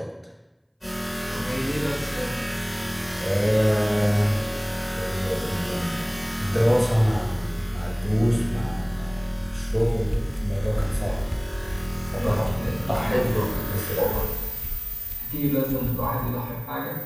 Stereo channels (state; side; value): identical; both; correlation 1.00